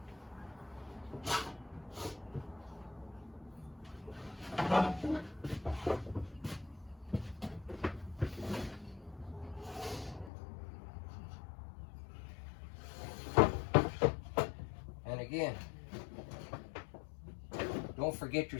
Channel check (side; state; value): right; drops out; at 10.3 s